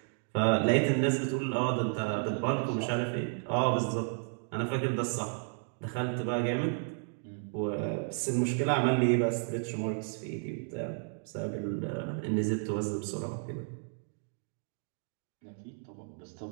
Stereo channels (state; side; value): silent; left; 56 dB below the other